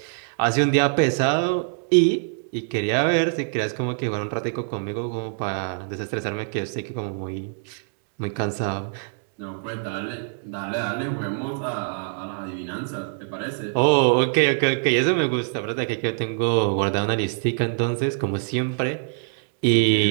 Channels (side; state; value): left; silent; digital silence